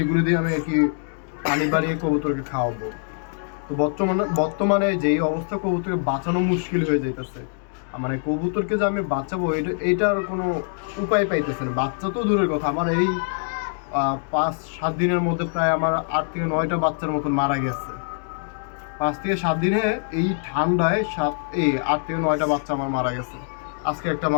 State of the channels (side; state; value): right; silent; digital silence